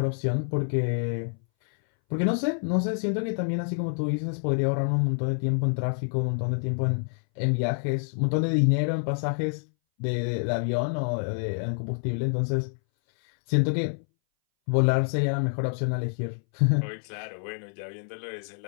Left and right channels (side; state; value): right; silent; 60 dB below the other